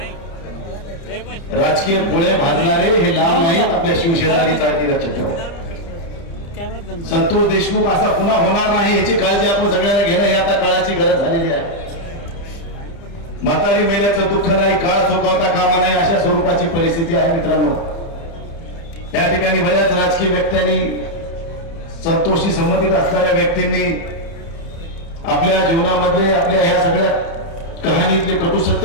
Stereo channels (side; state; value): right; late; 30 ms